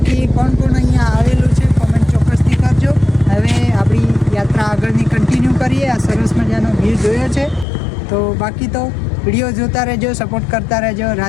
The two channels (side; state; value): right; drops out; at 7.7 s